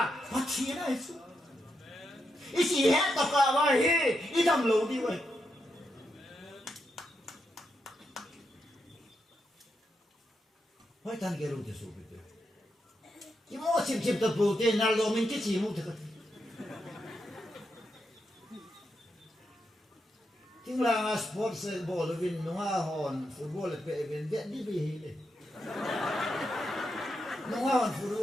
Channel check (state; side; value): normal; both; correlation 0.83